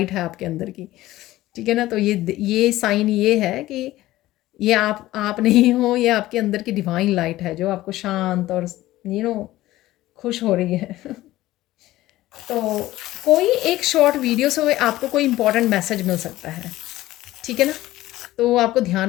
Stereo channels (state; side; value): quieter; right; 16.2 dB